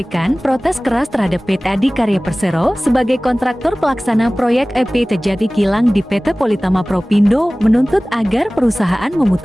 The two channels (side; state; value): both; normal; correlation 0.98